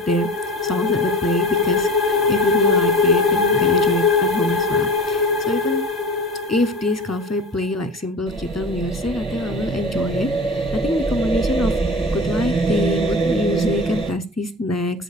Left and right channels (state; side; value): normal; both; correlation 0.34